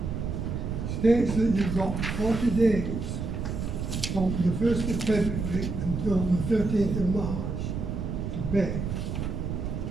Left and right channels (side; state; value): right; noise; rumble, 3 dB below the sound